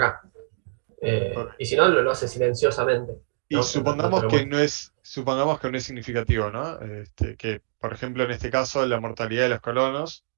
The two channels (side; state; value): left; silent; digital silence